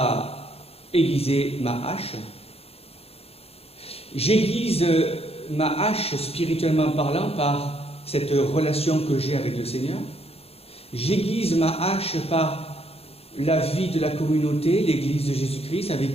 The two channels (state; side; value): late; right; 0.29 ms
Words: aiguisé ma hache. J'aiguise ma hache spirituellement parlant par cette relation que j'ai avec le Seigneur. J'aiguise ma hache par la vie de la communauté, l'Église de Jésus-Christ, avec